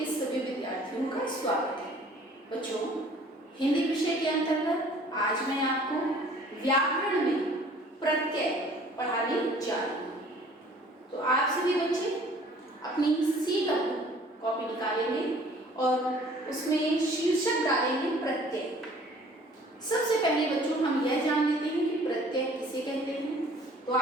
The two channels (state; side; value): normal; both; correlation 0.53